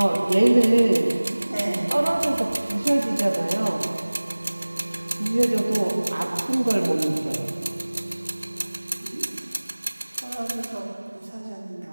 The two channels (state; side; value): inverted; both; correlation -1.00